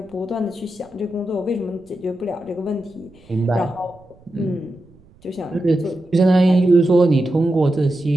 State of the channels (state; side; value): noise; right; rumble, 28 dB below the sound